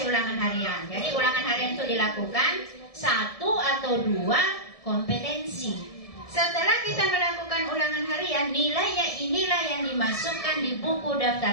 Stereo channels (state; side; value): late; right; 1.7 ms